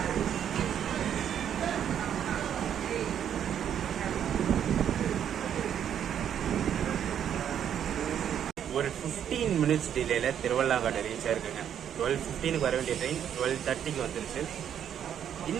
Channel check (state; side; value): quieter; left; 9.3 dB